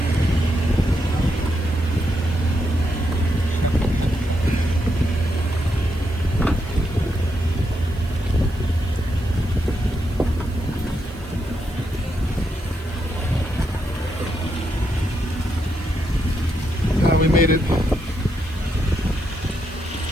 We made it.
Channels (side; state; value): right; noise; hiss, 25 dB below the sound